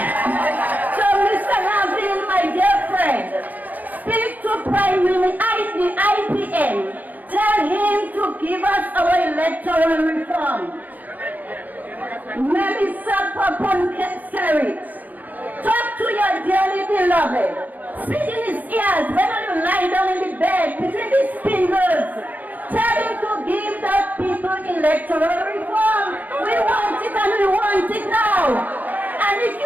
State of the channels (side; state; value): left; late; 0.082 ms